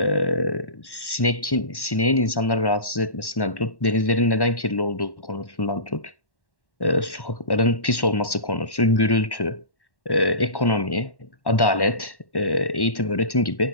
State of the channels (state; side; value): late; right; 1.1 ms